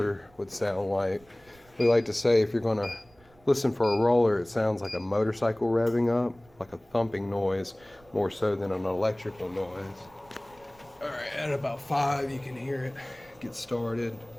would sound like. We like to say if you're going to listen for a roller, it sounds like a motorcycle revving up, like a thumping noise, more so than an electrical noise. Alright, at about 5 you can hear it get started,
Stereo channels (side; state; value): right; noise; rumble, 28 dB below the sound